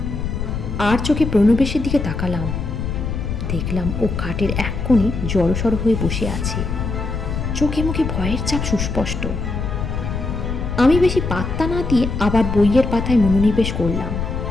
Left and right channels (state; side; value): noise; left; rumble, 3 dB below the sound